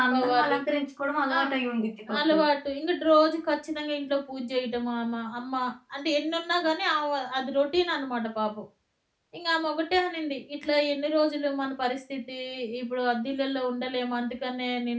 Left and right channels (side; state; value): both; identical; correlation 1.00